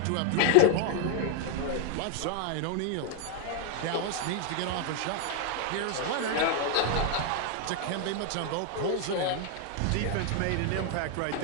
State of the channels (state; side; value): different; both; correlation 0.00